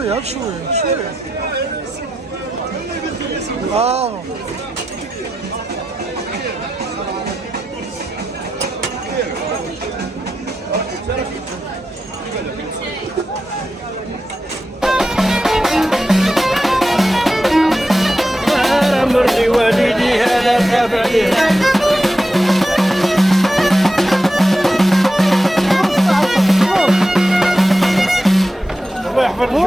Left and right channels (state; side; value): normal; both; correlation 0.89